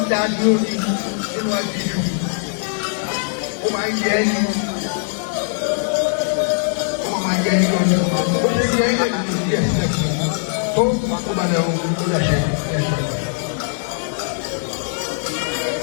ń dá dúró ní nínú àjíjù, ó máa ń yẹ ẹni, ó máa yẹ ẹni lọ́dún, ó ṣe yẹ ẹni lẹ́yìn tó yẹ sílẹ̀ fún un. Tó ó balẹ̀ ohun tó yàṣẹ ẹ̀ṣẹ̀.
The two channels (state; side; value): silent; right; digital silence